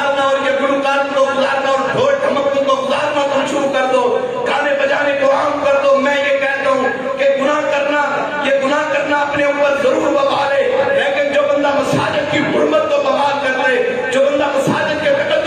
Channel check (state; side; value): identical; both; correlation 1.00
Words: اور یہ گلوکاروں کو گزارنا اور ڈھول ڈھمکوں کو گزارنا تم شروع کر دو. گانے بجانے کو عام کر دو. میں یہ کہتا ہوں کہ گناہ کرنا اپنے اوپر ضرور وبال ہے, لیکن جو بندہ مساجد کی حرمت کو بمال کر دے, جو بندہ مساجد کے